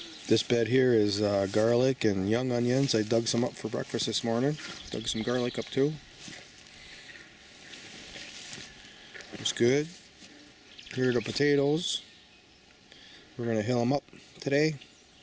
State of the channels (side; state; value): both; identical; correlation 1.00